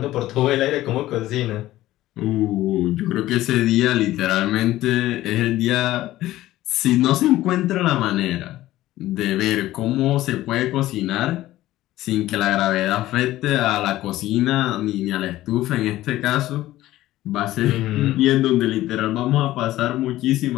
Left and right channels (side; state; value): right; quieter; 15.5 dB